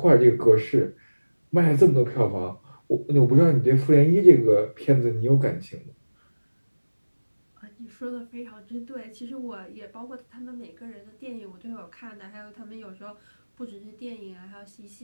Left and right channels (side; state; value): both; inverted; correlation -1.00